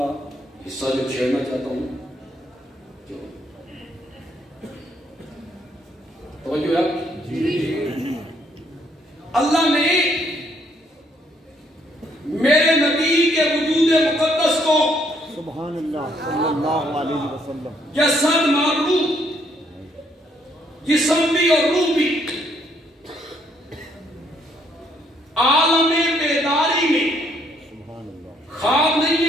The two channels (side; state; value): both; normal; correlation 0.70